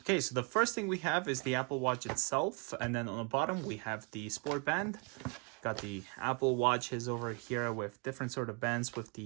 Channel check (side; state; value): left; quieter; 33.9 dB